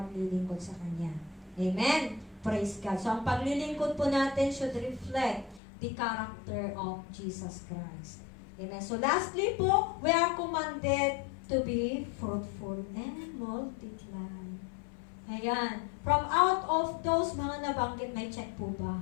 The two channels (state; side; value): drops out; right; at 5.6 s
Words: sa Kanya. Amen. Praise God. So ang paglilingkod po natin should reflect the character of Jesus Christ. Amen. So lastly po, we are commanded to be fruitful and multiply. Ayan. From out of those mga nabanggit, may check po ba?